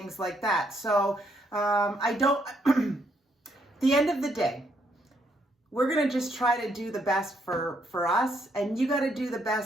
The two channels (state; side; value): normal; both; correlation 0.73